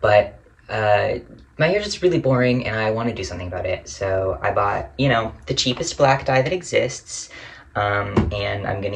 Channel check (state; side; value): identical; both; correlation 1.00